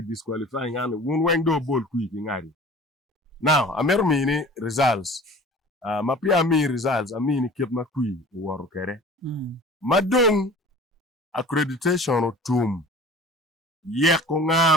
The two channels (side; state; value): both; normal; correlation 0.44